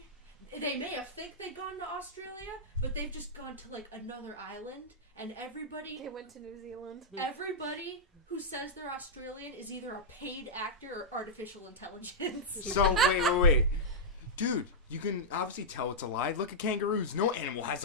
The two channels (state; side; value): normal; both; correlation -0.08